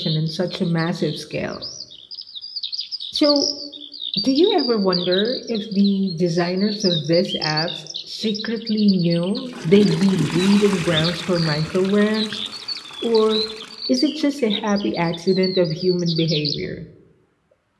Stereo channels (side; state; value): both; identical; correlation 1.00